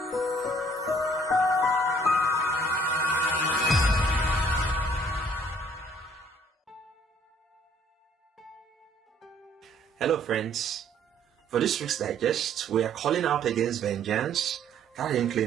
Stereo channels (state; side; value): normal; both; correlation 0.60